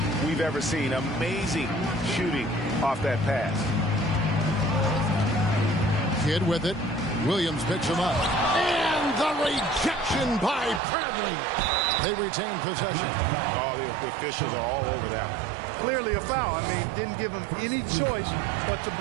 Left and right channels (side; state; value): left; drops out; at 10.8 s